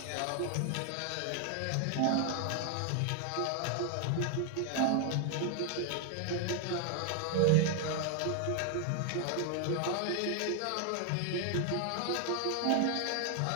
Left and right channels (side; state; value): both; different; correlation 0.00